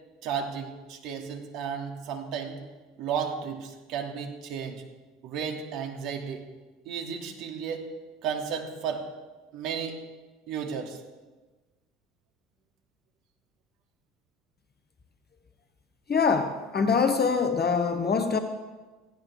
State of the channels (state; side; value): normal; both; correlation 0.33